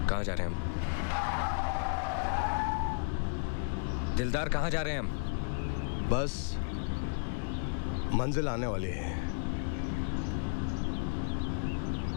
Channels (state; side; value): silent; right; 55 dB below the other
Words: कहाँ जा रहे हैं हम? दिलदार कहाँ जा रहे हैं हम? बस मंजिल आने वाली है।